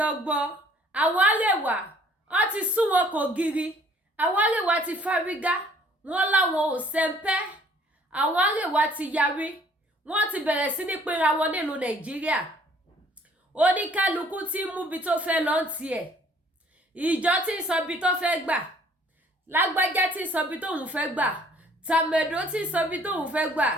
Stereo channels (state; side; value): normal; both; correlation 0.58